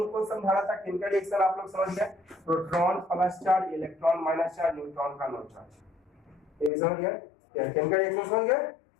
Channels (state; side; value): drops out; right; at 6.7 s